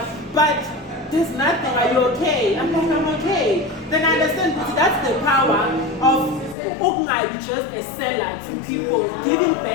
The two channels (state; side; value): drops out; right; at 6.6 s